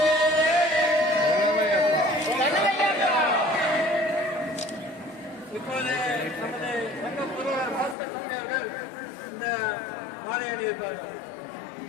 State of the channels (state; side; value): drops out; right; at 8.0 s